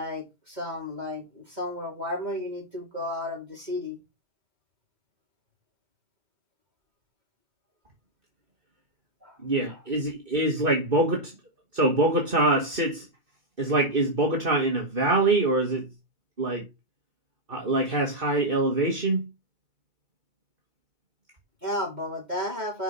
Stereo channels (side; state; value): left; late; 2.6 ms